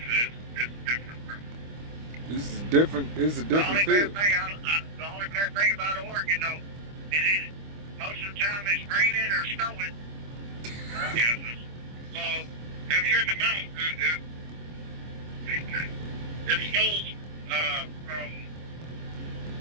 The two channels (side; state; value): left; late; 25 ms